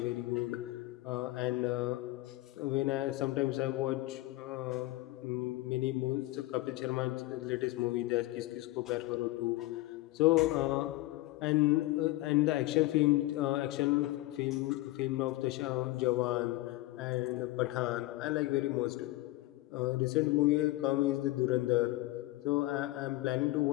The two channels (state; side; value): quieter; right; 18.5 dB